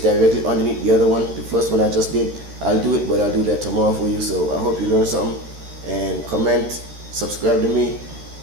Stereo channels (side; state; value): left; late; 14 ms